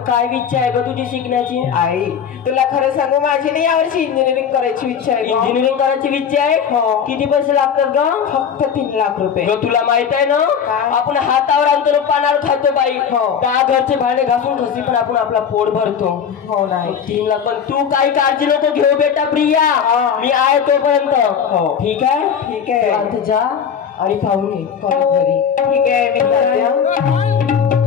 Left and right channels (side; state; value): right; quieter; 7.5 dB